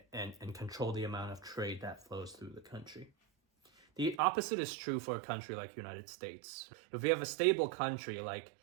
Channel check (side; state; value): left; drops out; at 4.2 s